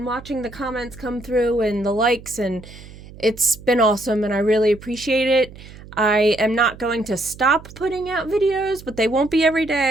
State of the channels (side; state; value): right; noise; hum, 18 dB below the sound